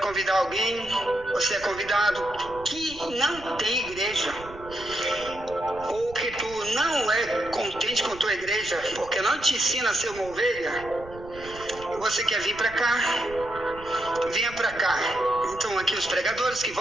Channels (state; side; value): noise; right; rumble, 17 dB below the sound